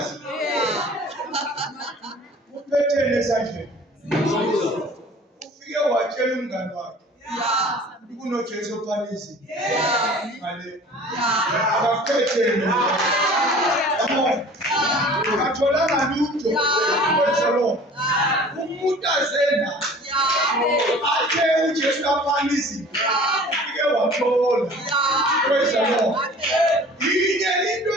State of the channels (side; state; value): both; normal; correlation 0.46